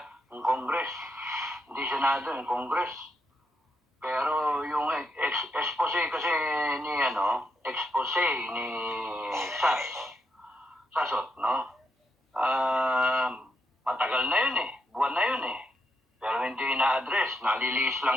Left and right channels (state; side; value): normal; both; correlation 0.80